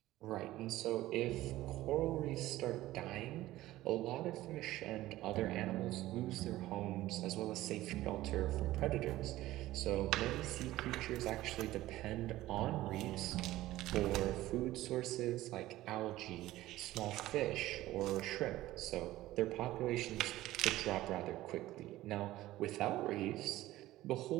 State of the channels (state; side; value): quieter; left; 16.0 dB